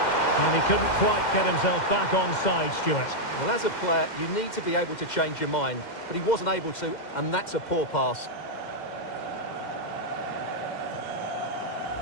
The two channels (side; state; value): right; late; 2.1 ms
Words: And he couldn't quite get himself back on side, Stuart. Well, as a player, you need to be able to change your mind, but he wasn't able to, and that's a poor pass.